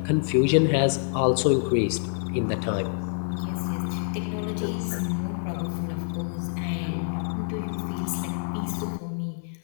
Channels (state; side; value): silent; right; digital silence